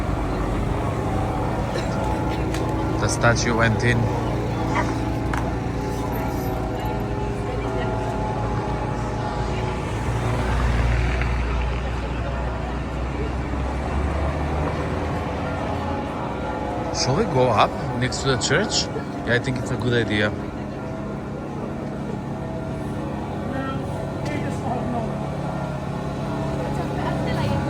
The statue went in. Shall we go up next to the church? Yeah, I think it's a good idea.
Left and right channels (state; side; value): identical; both; correlation 1.00